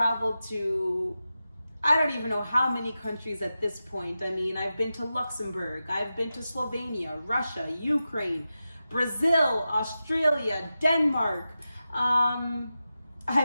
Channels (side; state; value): both; inverted; correlation -0.92